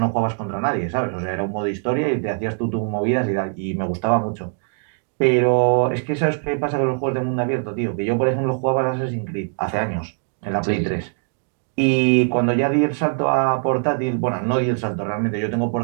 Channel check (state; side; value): silent; left; 60 dB below the other